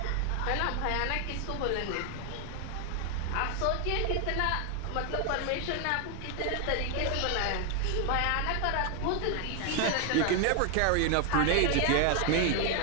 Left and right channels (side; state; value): both; different; correlation 0.00